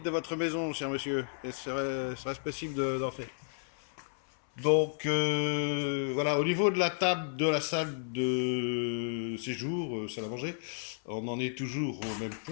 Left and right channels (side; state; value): right; silent; 56 dB below the other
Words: de votre maison, cher monsieur. Et serait-ce possible d'entrer? Donc voilà, au niveau de la table de la salle de séjour, salle à manger, on en est toujours au même